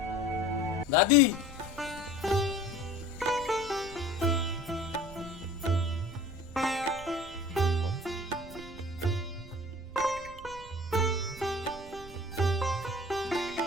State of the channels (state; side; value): noise; right; rumble, 16 dB below the sound